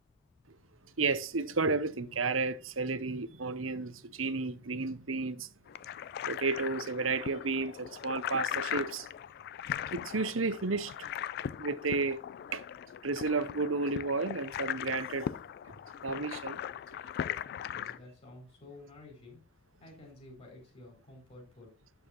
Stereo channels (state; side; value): normal; both; correlation -0.12